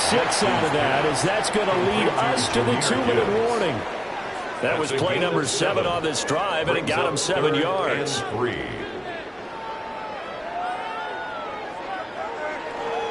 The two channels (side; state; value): both; identical; correlation 1.00